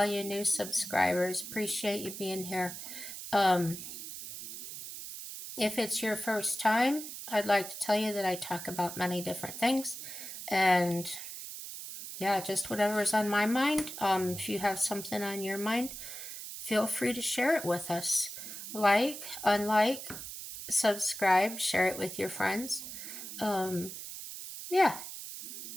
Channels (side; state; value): right; noise; hiss, 9 dB below the sound